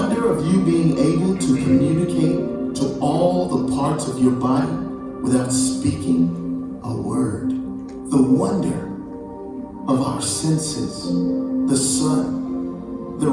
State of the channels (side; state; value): both; identical; correlation 1.00